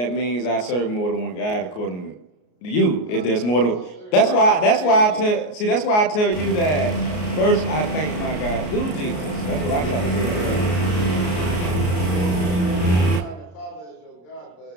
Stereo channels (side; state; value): right; late; 33 ms